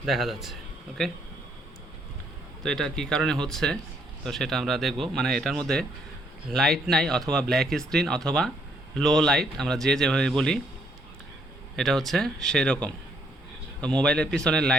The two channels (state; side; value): normal; both; correlation 0.70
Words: দেখা যাচ্ছে। ওকে, তো এটা কি কারণে হচ্ছে তো সেটা আমরা দেখব। মানে এটার মধ্যে লাইট নাই, অথবা ব্ল্যাক স্ক্রিন, অথবা লো লাইট, আমরা যেভাবে বলি এটা হচ্ছে সেই রকম। তো মোবাইলের পিছনে